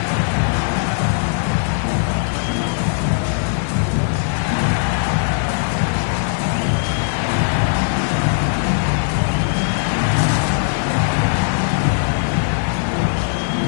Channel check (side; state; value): right; silent; digital silence